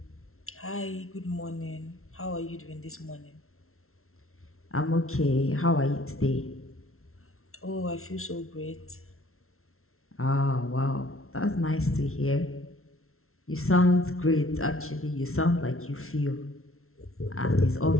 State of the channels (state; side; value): late; right; 0.62 ms